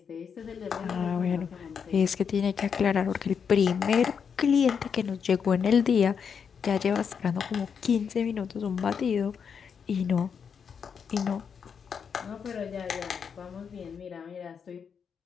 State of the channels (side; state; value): right; quieter; 6.7 dB